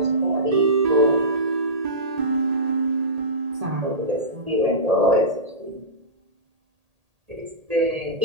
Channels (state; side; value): late; left; 1.8 ms